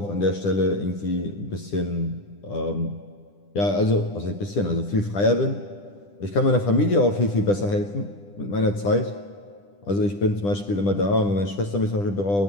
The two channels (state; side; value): late; right; 10 ms